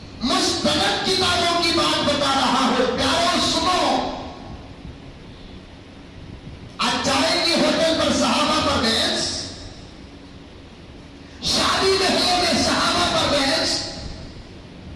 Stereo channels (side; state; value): both; identical; correlation 1.00